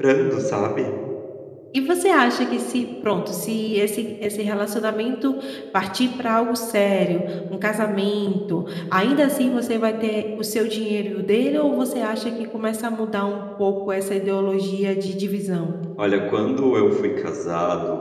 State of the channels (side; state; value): both; identical; correlation 1.00